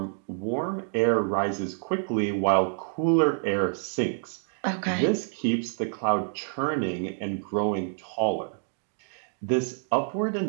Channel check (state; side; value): silent; left; 58 dB below the other